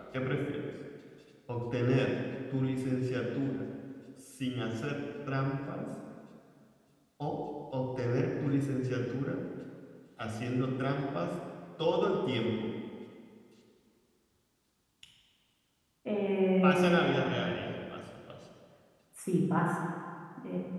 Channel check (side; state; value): both; identical; correlation 1.00